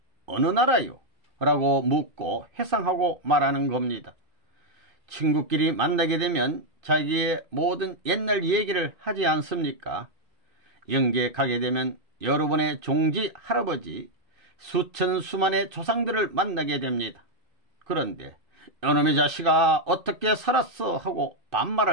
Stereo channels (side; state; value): left; late; 2.6 ms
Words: 어느 나라요? 라고 묻고 회상하고 말하는 겁니다. 친구끼리 만나게 되면 자기의 모든 옛날 얘기를 하지 않습니까? 영계에 가게 되면 여러분의 종지 할아버지 수천 수만의 조상들을 만나게 됩니다. 그런데 이놈의 자식아 어떻게 살았어 하고